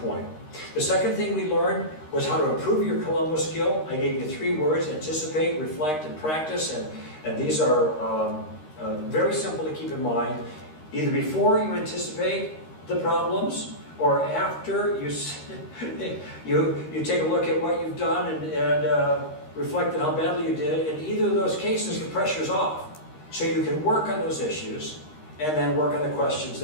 The second thing we learned was how to improve your Columbo skill. I gave you 3 words: anticipate, reflect, and practice. And these are very simple to keep in mind. Either before you anticipate the problems, or after you take a look at what you've done and reflect on how badly you did. In either of those cases, the pressure's off. So you can work on those issues and then work on the questions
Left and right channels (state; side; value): late; right; 13 ms